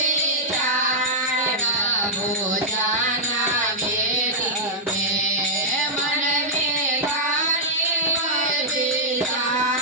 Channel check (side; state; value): both; normal; correlation -0.08